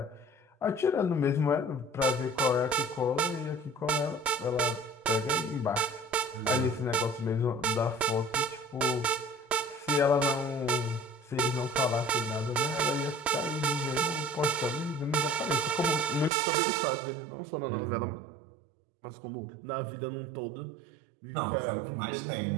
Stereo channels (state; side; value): drops out; left; at 16.3 s